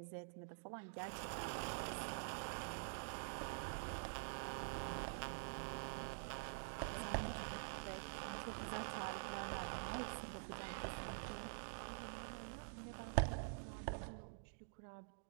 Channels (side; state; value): left; silent; digital silence